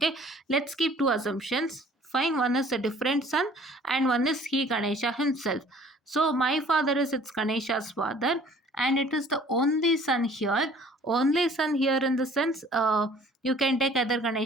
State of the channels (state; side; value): normal; both; correlation 0.53